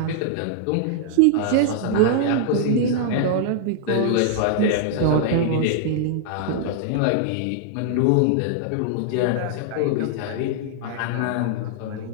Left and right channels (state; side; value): different; both; correlation -0.01